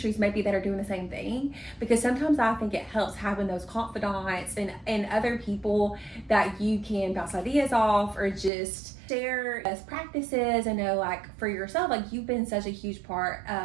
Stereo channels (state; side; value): drops out; left; at 8.5 s